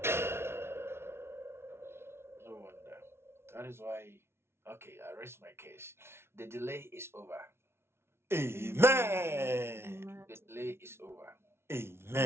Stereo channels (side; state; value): left; late; 0.12 ms